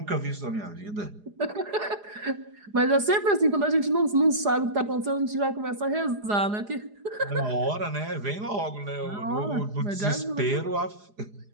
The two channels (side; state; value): left; late; 4.8 ms